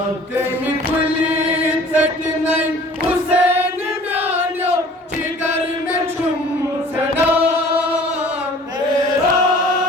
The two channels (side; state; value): both; normal; correlation 0.49